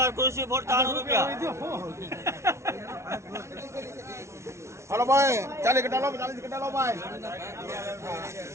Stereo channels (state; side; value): late; left; 0.13 ms